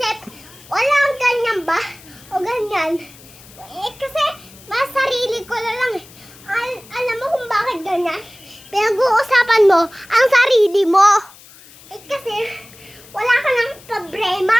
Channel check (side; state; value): left; noise; hiss, 22 dB below the sound